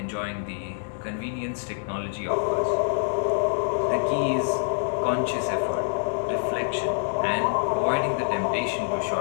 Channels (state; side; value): silent; right; digital silence